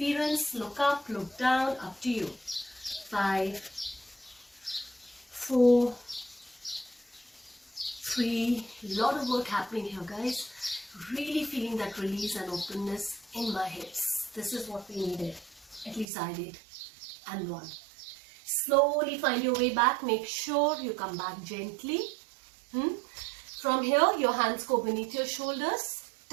Look up, look down, up to you. 5, 4, 3. Lot of work happening here, guys. Really feeling that release and openness in my hips. This is what we needed. At least I did. And 1. Slowly find your way back. Make sure you come back gently. From here, your hands go beneath your shoulders.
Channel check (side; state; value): left; drops out; at 16.1 s